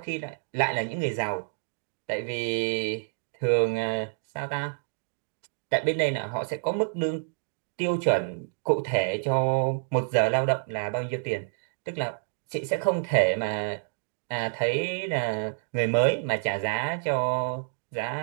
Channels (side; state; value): left; silent; digital silence